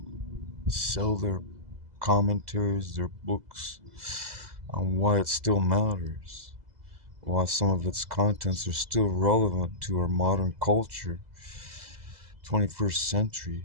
sell their commentaries, their books, on why it still matters, why some of its contents are still relevant to our modern culture, 21st century.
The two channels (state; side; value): late; left; 2.0 ms